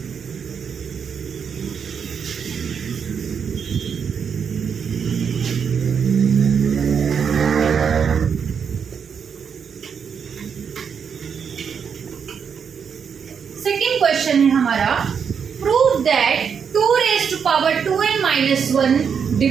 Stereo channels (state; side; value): quieter; left; 6.9 dB